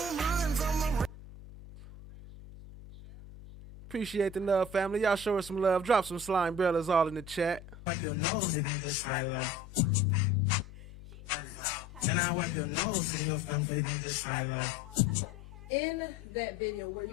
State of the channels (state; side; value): noise; left; hum, 17 dB below the sound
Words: run from a Appreciate the love, family. Y'all show us some love. Drop some slime bellas all in the chat. wipe your nose and just right like. And I wipe your nose and your family just right like. In that video, were